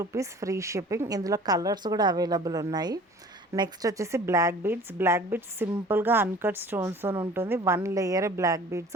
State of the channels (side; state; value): both; normal; correlation 0.47